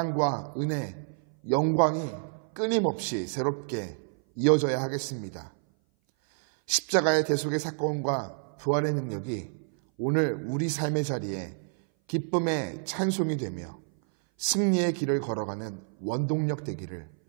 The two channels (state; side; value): silent; left; 57 dB below the other